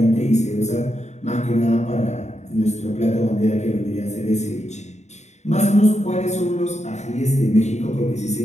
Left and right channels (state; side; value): late; right; 0.33 ms